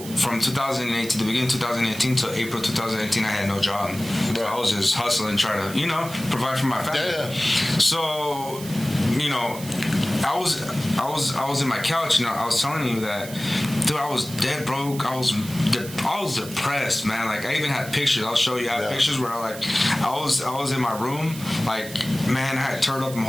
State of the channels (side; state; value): right; noise; hiss, 13 dB below the sound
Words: from 2008 to the beginning of 2018 to April 2018, I had no job. Right. So I was just hustling, trying to, provide for my family. Yeah. So, I was in my couch, I was telling you that, dude, I was dead broke. I was depressed, man. Like, I even had pictures. I'll show you. I have pictures where I was in my room. Like, man, I had turned up my